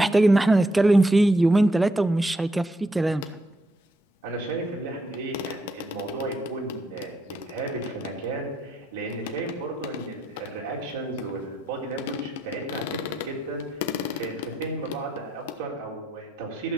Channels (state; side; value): normal; both; correlation 0.77